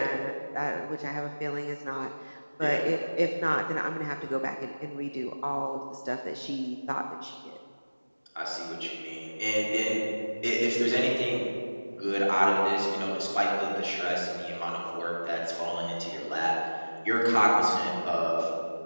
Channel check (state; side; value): inverted; both; correlation -1.00